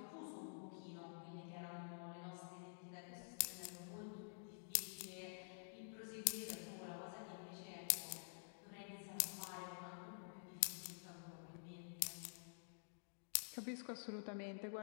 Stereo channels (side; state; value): right; silent; digital silence